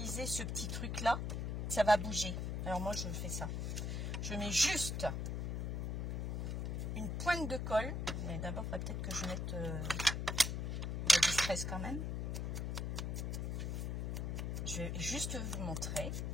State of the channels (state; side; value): noise; left; hum, 1 dB below the sound